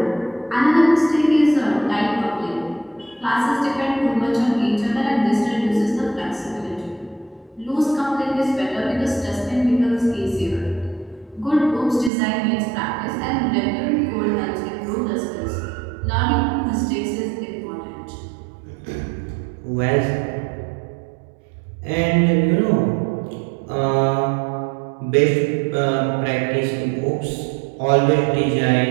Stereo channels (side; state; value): left; drops out; at 12.1 s